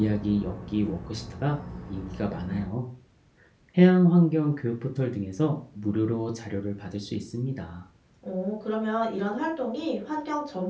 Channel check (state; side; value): identical; both; correlation 1.00